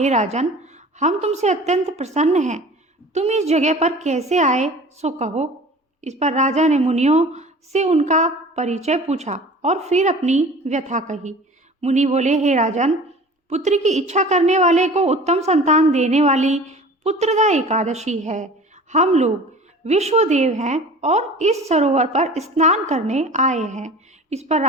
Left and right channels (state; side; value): normal; both; correlation 0.42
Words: राजन, हम तुमसे अत्यंत प्रसन्न हैं। तुम इस जगह पर कैसे आए सो कहो। इस पर राजा ने मुनियों से उनका परिचय पूछा और फिर अपनी व्यथा कही। मुनि बोले, हे राजन, पुत्र की इच्छा करने वाले को उत्तम संतान देने वाली पुत्रदा एकादशी है। हम लोग विश्वदेव हैं और इस सरोवर पर स्नान करने आए हैं। इस पर